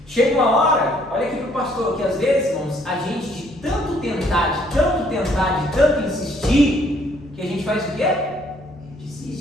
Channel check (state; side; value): normal; both; correlation 0.65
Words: Chega uma hora, olha aqui para o pastor, que às vezes, irmãos, a gente de tanto tentar, de tanto insistir, que a gente faz o quê?